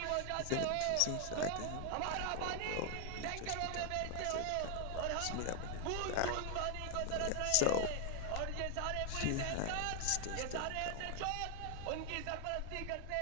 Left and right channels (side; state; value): both; different; correlation 0.00